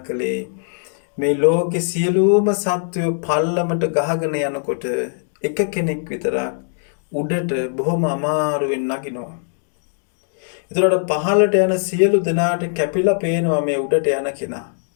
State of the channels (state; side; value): silent; right; digital silence